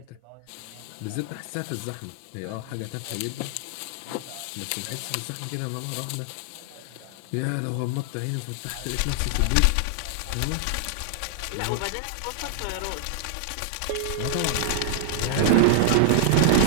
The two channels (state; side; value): different; both; correlation -0.01